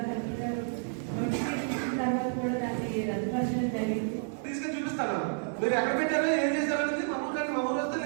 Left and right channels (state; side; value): silent; left; 58 dB below the other